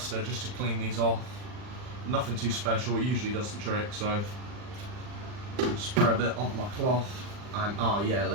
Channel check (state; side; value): late; left; 39 ms